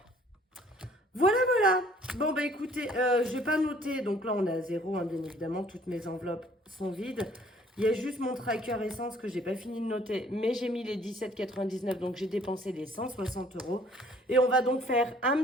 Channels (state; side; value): normal; both; correlation 0.57